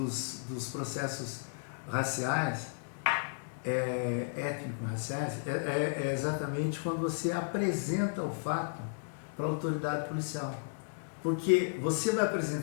processos raciais, étnico-raciais, é exatamente quando você apresenta o fato para a autoridade policial. Porque você vai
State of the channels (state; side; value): silent; right; digital silence